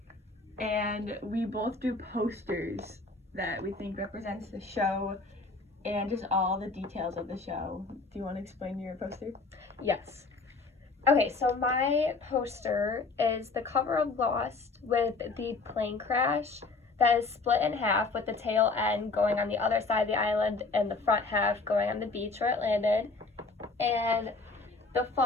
and we both do posters that we think represents the show and just all the details of the show. Do you want to explain your poster? Yes. Okay, so my poster is the cover of Lost with the plane crash that is split in half with the tail end going on the other side of the island and the front half going on the beach where it landed. And the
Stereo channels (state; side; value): quieter; right; 3.8 dB